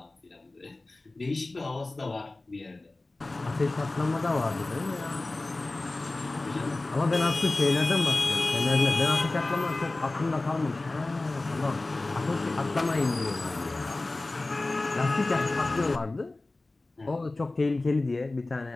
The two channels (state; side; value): quieter; right; 3.0 dB